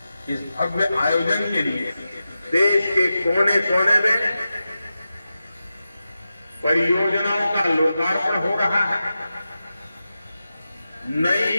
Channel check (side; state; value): both; inverted; correlation -0.92